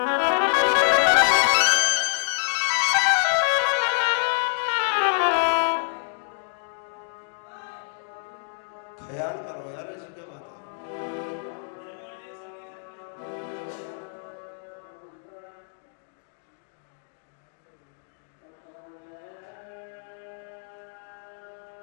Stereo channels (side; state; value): right; silent; 60 dB below the other